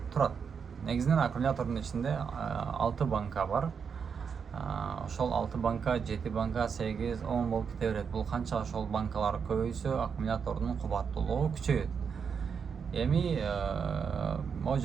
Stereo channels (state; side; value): quieter; left; 6.4 dB